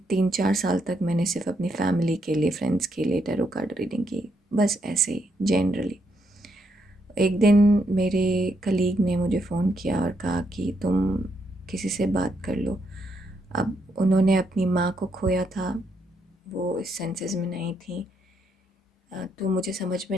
3 4 साल तक मैंने सिर्फ अपनी फैमिली के लिए, फ्रेंड्स के लिए टैरो कार्ड रीडिंग की, बस ऐसे ही जनरली। एक दिन मेरे कलीग ने मुझे फ़ोन किया और कहा कि तुम किसी से बात कर लो। अब उन्होंने अपनी माँ को खोया था, वो इस सेंसेस में नहीं थी। तो मुझे समझ में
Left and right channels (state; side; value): normal; both; correlation 0.77